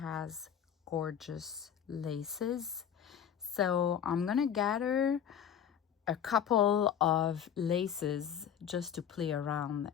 gorgeous laces. So I'm gonna gather a couple of laces just to play around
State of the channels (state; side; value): quieter; right; 8.7 dB